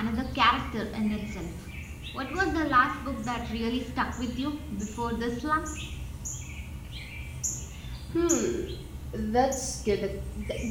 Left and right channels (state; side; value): identical; both; correlation 1.00